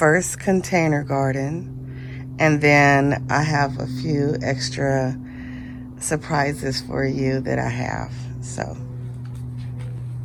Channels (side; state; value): both; identical; correlation 1.00